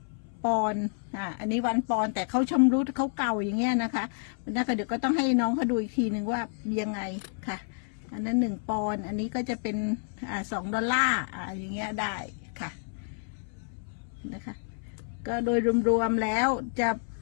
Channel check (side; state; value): right; silent; 57 dB below the other